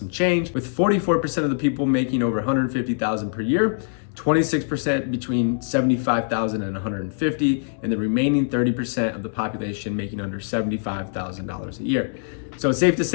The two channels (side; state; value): right; silent; 63 dB below the other